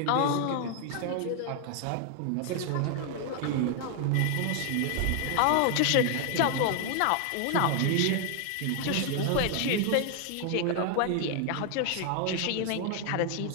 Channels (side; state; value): both; different; correlation 0.00